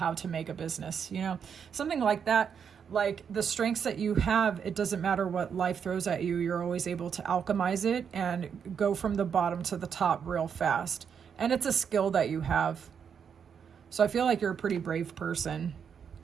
to make a business, you know, something like that. Like, the strengths that you have, it doesn't matter what life throws at you, you're always able to alchemize it and go from the bottom to the top real fast. And it's a skill that you have. So I feel like you're a pretty brave person.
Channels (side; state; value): left; quieter; 7.2 dB